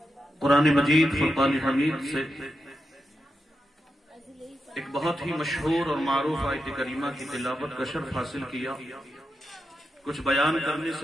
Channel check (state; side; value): normal; both; correlation 0.87